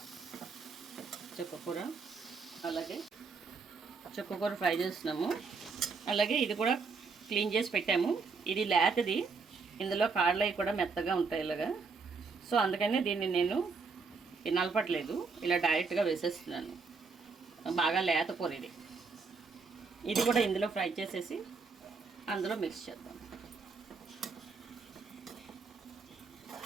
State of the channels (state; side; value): quieter; left; 4.7 dB